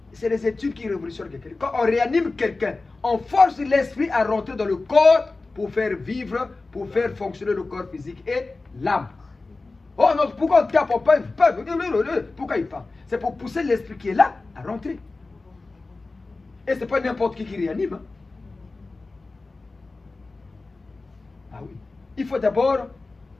c'est les études qui révolutionnent quelqu'un. Quand on réanime quelqu'un, on force l'esprit à rentrer dans le corps pour faire vivre, pour faire fonctionner le corps physique et l'âme. Oh non, pourquoi on tape, on parle? Pourquoi il parle? C'est pour pousser l'esprit qui est là à rentrer. Et ce n'est pas n'importe qui réanime. Hein. Ah oui. Il faut d'abord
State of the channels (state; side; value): quieter; right; 3.5 dB